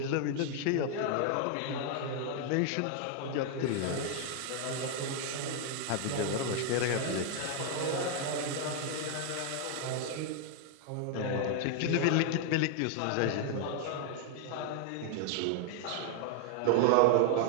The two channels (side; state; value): both; different; correlation 0.00